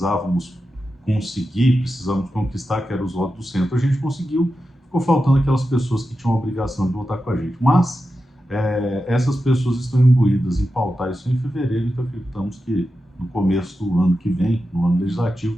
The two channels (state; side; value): normal; both; correlation 0.91